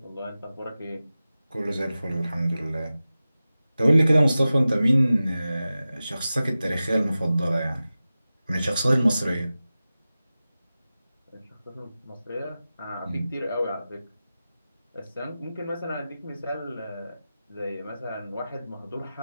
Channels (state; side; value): inverted; both; correlation -0.95